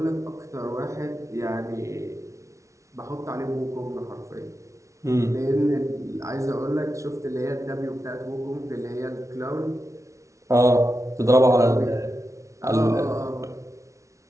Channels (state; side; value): late; left; 0.14 ms